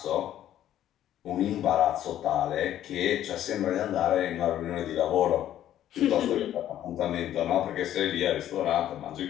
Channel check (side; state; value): right; quieter; 11.8 dB